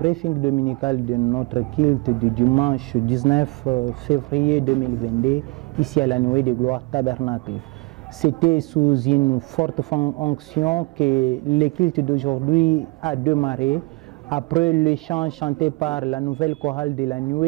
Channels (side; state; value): left; quieter; 26.7 dB